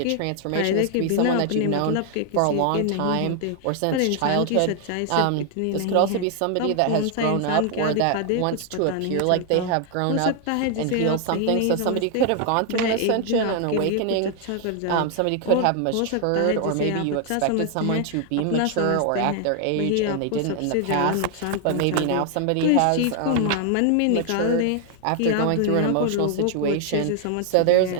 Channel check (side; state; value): both; different; correlation 0.00